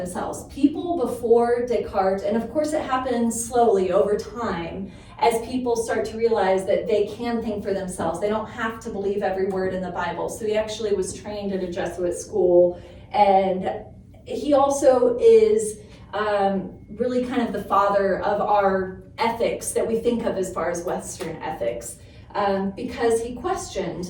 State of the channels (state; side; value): identical; both; correlation 1.00